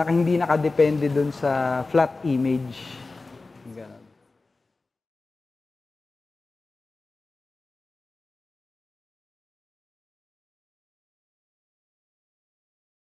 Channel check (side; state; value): right; quieter; 3.5 dB